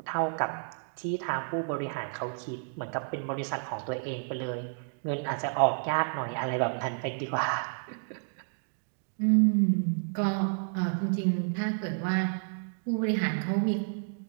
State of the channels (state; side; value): silent; left; digital silence